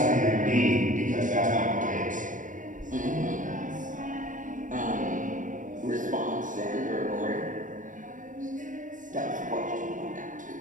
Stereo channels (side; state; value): left; late; 0.38 ms